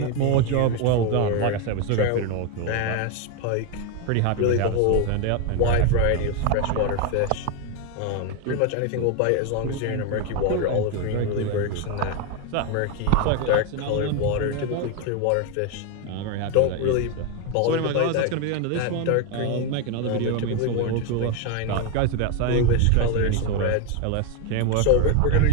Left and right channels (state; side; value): different; both; correlation 0.01